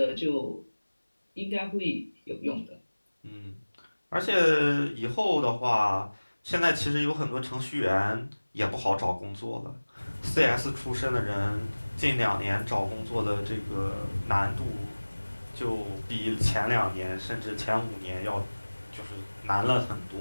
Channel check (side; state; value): both; inverted; correlation -1.00